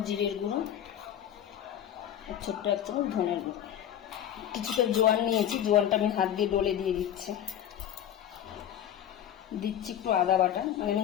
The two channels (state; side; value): quieter; right; 10.5 dB